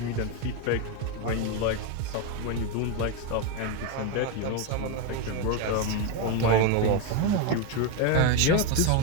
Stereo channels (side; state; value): both; different; correlation 0.03